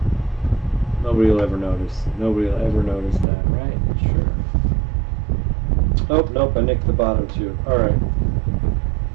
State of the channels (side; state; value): left; drops out; at 3.2 s